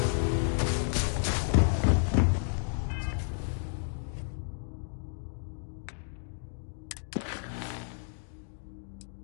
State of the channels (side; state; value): right; silent; 57 dB below the other